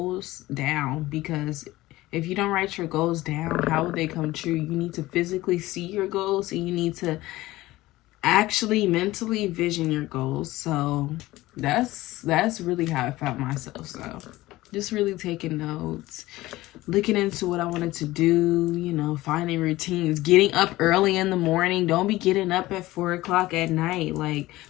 down, because if you don't write your goals down, how will they come true? You need to physically see your goals, and you need to actually mentally vision your goals. So that's really how I found myself. So just really taking notes, looking into what I wanted to do, finding routines, getting up early in the morning. Don't be getting up at 4 o'clock at night, like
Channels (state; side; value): quieter; right; 17.9 dB